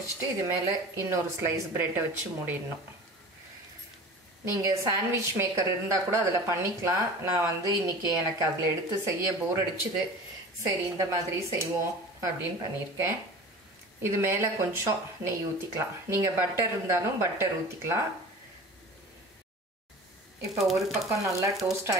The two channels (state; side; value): normal; both; correlation 0.38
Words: இது மேலே இன்னொரு ஸ்லைஸ் ப்ரெட்டை வச்சு மூடிடணும். நீங்கள் சாண்ட்விச் மேக்கர் இருந்தால் கூட அதில் பண்ணிக்கலாம். நான் வந்து இன்றைக்கி எனக்கு அதில் எடுத்து செய்ய போர் அடிச்சுது. சரி இந்த மாதிரி செய்வோம் அப்படின்னு பண்ணியிருக்கேன். இது மேலே கொஞ்சம் நெய் ஊற்றிக்கலாம். நீங்கள் பட்டர் இருந்தாலும் பட்டர் ஊற்றிக்கலாம். இப்போ ஒரு பக்கம் நல்லா டோஸ்ட்